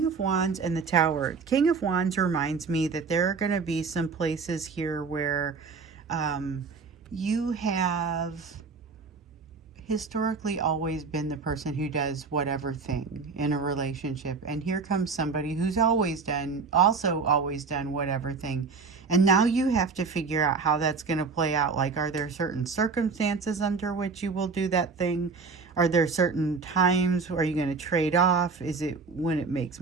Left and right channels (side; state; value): left; quieter; 4.8 dB